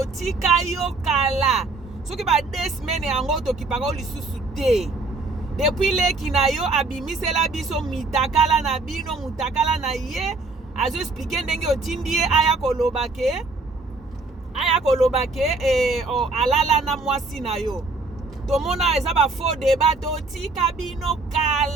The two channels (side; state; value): left; quieter; 3.4 dB